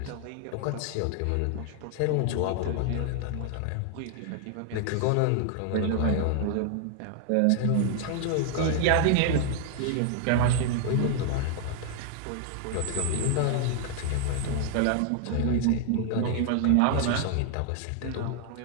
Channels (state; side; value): different; both; correlation 0.00